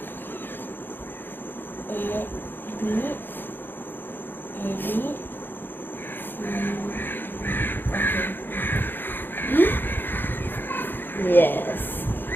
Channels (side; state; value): right; late; 0.097 ms